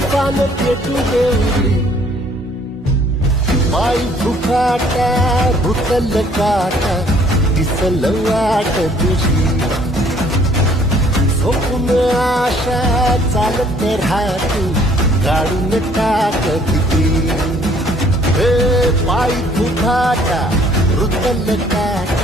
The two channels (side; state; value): both; normal; correlation 0.60